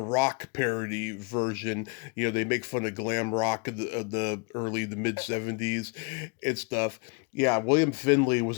parody version. They make fun of glam rock of the early the mid '70s and stuff. Yeah, William Finley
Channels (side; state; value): right; quieter; 33.3 dB